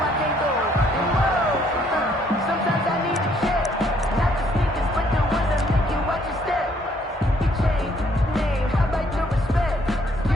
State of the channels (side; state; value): both; normal; correlation 0.66